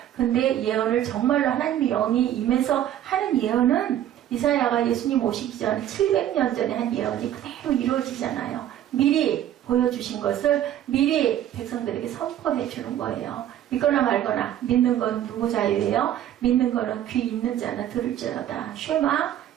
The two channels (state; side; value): quieter; left; 11.5 dB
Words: 근데 예언을 정말로 하나님의 영이 임해서 하는 예언은 이사야가 예수님 오시기 전 700년 전에 한 예언이 그대로 이루어지잖아요. 미리 보여주신 것을 미리 백성들에게 선포해 주는 거예요. 믿거나 말거나 믿는 건 누구 자유예요? 믿는 거는 귀 있는 자는 들을지어다. 쉐마